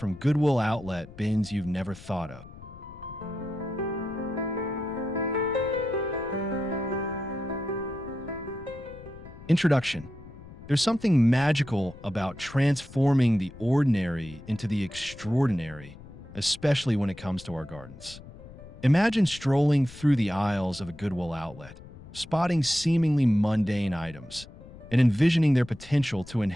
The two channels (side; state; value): left; noise; rumble, 18 dB below the sound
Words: Goodwill outlet bins you've never thought of. Introduction. There's something magical about transforming the ordinary into the extraordinary, especially when it comes to our gardens. Imagine strolling through the aisles of a Goodwill outlet, spotting seemingly mundane items, and envisioning their potential to